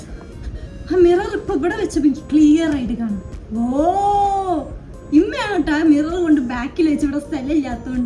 മിറർ ഇപ്പൊ ഇവിടെ വെച്ചപ്പോ എനിക്ക് ക്ലിയർ ആയിട്ട് കാണും. ഓ ഇമ്മയാണ് കേട്ടോ മിറർ കൊണ്ട് ബാക്കിൽ വെച്ച് ഇവിടെ സ്ഥലം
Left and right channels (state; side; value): identical; both; correlation 1.00